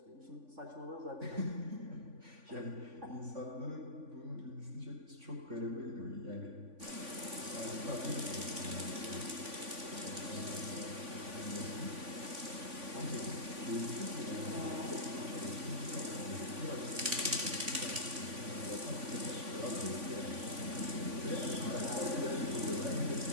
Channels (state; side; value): late; left; 3.5 ms